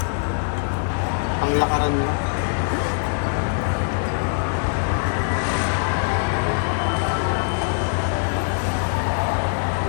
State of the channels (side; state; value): right; silent; 64 dB below the other